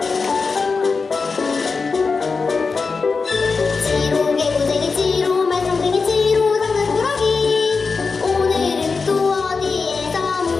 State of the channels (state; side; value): quieter; right; 4.6 dB